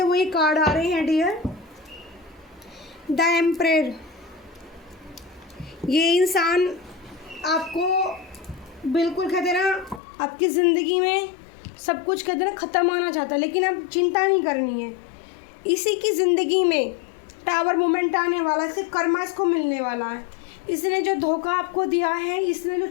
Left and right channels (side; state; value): right; drops out; at 10.0 s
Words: वही कार्ड आ रहे हैं डियर। द एम्परर, ये इंसान आपको बिल्कुल कहते ना आपकी ज़िंदगी में सब कुछ कहते ना ख़त्म आना चाहता है, लेकिन अब चिंता नहीं करनी है। इसी की ज़िंदगी में टावर मोमेंट आने वाला है, इससे कर्मा इसको मिलने वाला है। इसने जो धोखा आपको दिया है, इसने जो